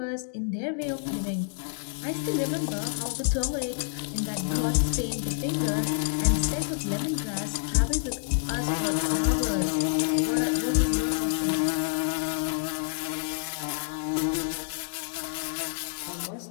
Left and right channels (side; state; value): right; silent; digital silence